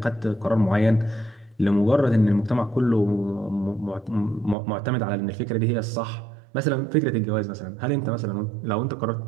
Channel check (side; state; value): left; drops out; at 4.5 s